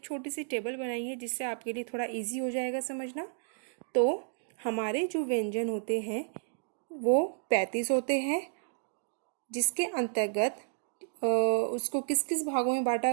छोटी सी टेबल बनाई है जिससे आपके लिए थोड़ा इजी हो जाएगा समझना। तो हमारे जो व्यंजन होते हैं वो 35 होते हैं, जिसके अंतर्गत उसको किस किस भागों में बांटा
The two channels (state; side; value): silent; left; digital silence